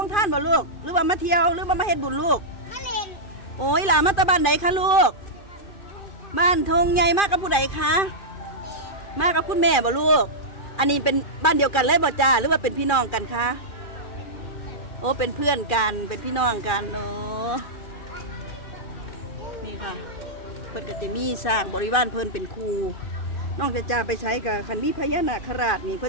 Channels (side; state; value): right; late; 2.4 ms